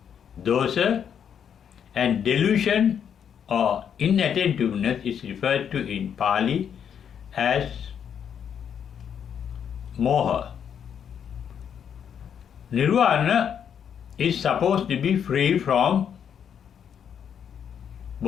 dosa, and delusion or inattentiveness is referred to in Pali as moha. Nirvana is supposed to be free from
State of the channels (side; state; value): right; quieter; 8.2 dB